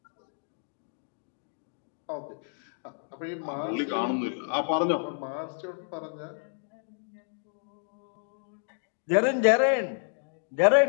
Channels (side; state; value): right; silent; digital silence